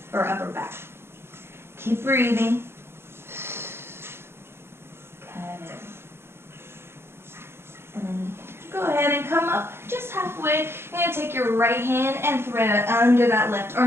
or upper back. Keep breathing. Good. And then go ahead and come up just halfway. You're going to take your right hand and thread it under that left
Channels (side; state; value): left; late; 0.12 ms